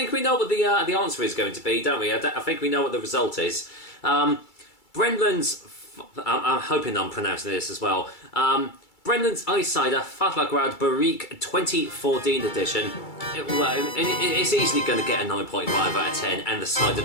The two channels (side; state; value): right; late; 2.3 ms